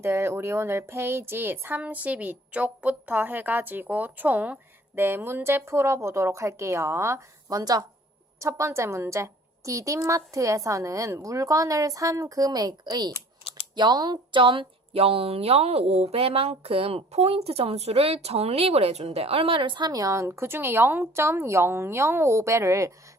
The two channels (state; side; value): normal; both; correlation 0.52